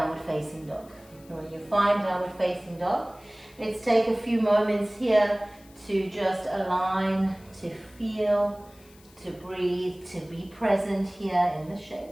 facing dog. When you find downward facing dog, let's take a few moments here to just align, to feel, to breathe, to be present here in the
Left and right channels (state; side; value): noise; left; hiss, 26 dB below the sound